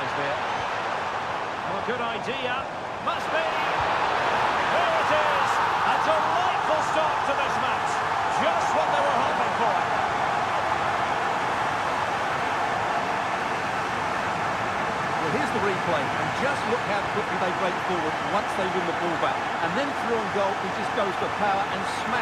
there. Oh, good idea. Must be. There it is. A delightful start to this match. Just what they were hoping for. Well, here's the replay, and just look how quickly they break forward once they win the ball back. And then through on goal, he just goes for power and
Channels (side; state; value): both; identical; correlation 1.00